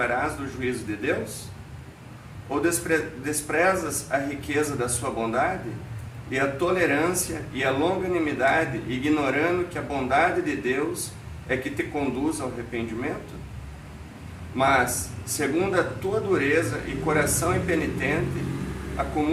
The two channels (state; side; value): identical; both; correlation 1.00